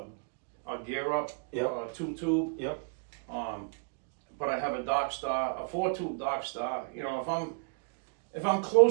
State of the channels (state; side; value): quieter; left; 38.2 dB